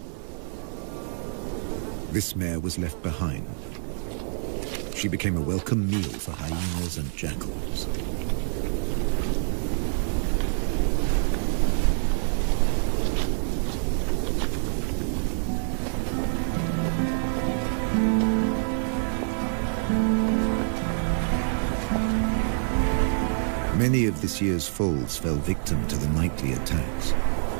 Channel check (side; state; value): left; silent; 61 dB below the other